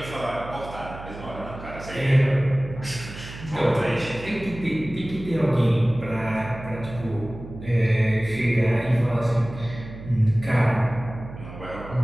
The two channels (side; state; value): right; noise; hum, 13 dB below the sound